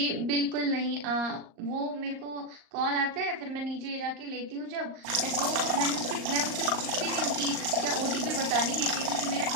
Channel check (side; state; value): left; late; 38 ms